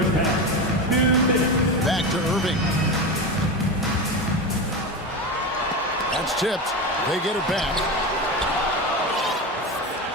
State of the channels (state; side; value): normal; both; correlation 0.21